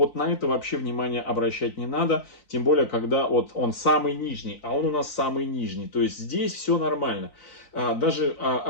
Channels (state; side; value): late; right; 3.9 ms